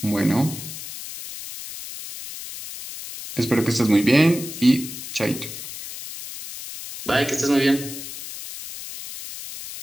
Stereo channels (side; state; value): left; noise; hiss, 11 dB below the sound